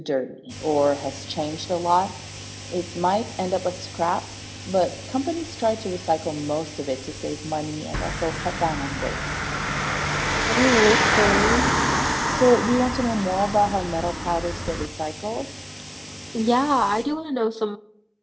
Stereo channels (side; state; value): both; identical; correlation 1.00